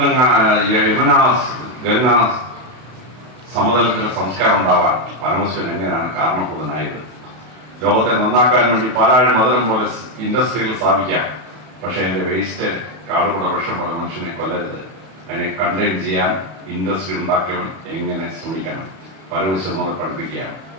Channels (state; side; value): late; left; 32 ms